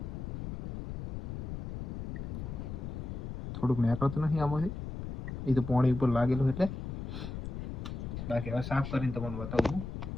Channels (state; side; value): noise; left; rumble, 6 dB below the sound